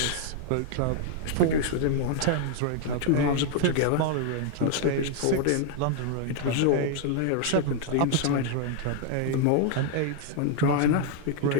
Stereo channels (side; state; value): both; different; correlation 0.00